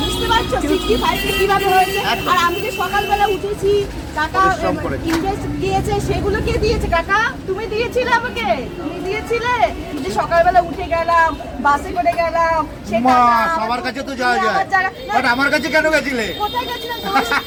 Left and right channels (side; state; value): both; identical; correlation 1.00